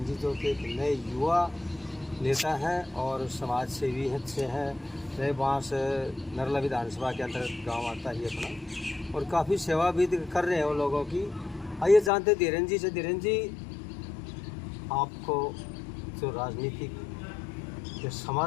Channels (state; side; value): drops out; right; at 12.1 s